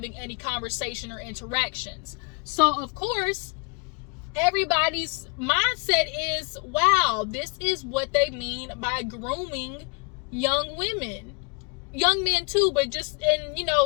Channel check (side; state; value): right; quieter; 34.7 dB